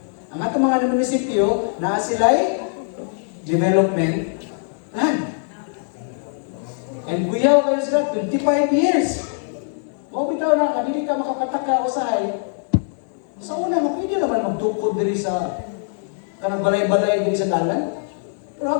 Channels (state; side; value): silent; right; digital silence